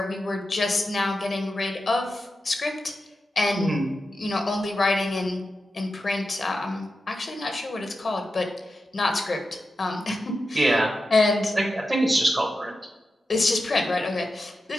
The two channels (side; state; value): both; normal; correlation 0.91